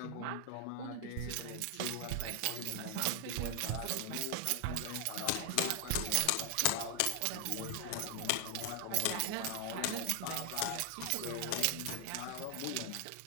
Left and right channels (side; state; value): both; different; correlation 0.00